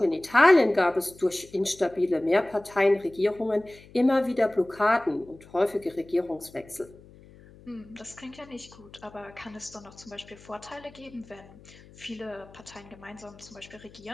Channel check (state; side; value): noise; left; hum, 22 dB below the sound